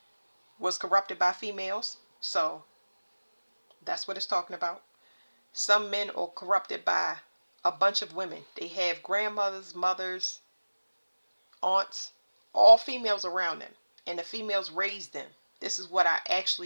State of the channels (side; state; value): both; inverted; correlation -1.00